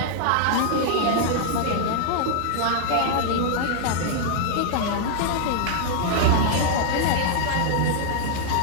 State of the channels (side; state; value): both; different; correlation -0.01